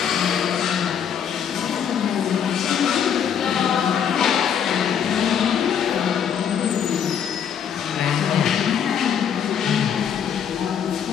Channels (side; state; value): right; quieter; 8.2 dB